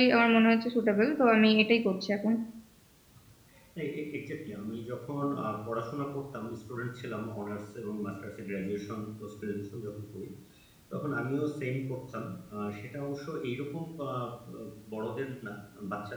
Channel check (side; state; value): both; identical; correlation 1.00